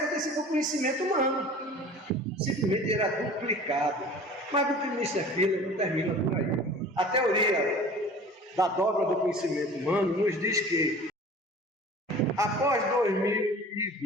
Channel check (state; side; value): normal; both; correlation 0.43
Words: com o conhecimento humano. Simplesmente era duplicado. Mas o Buckminster Fuller não termina por aí. A teoria da dobra do conhecimento humano nos diz que após